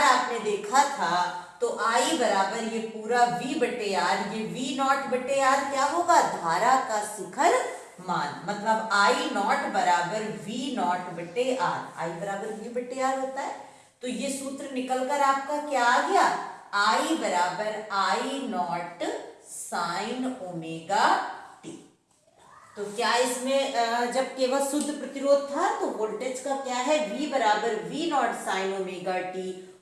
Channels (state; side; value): identical; both; correlation 1.00